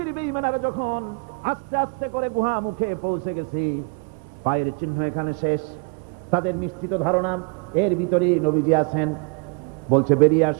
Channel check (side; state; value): left; quieter; 35.7 dB